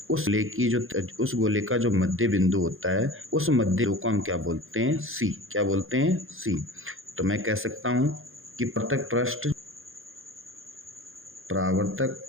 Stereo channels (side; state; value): left; late; 0.60 ms